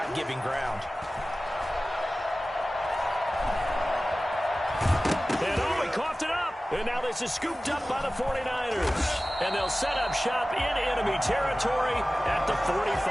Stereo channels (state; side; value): normal; both; correlation 0.96